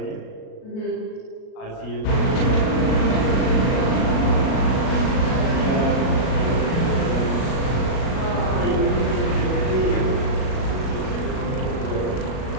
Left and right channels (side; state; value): right; late; 37 ms